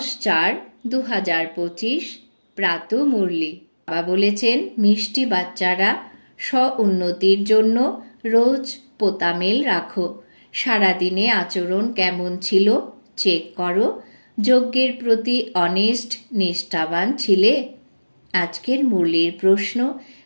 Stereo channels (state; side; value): inverted; both; correlation -1.00